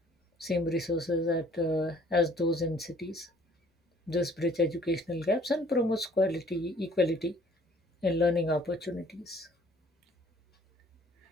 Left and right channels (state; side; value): normal; both; correlation 0.57